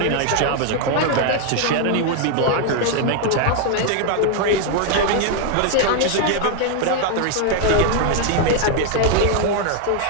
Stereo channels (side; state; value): both; different; correlation 0.00